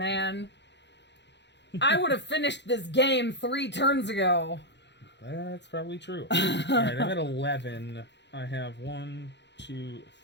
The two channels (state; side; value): late; right; 0.51 ms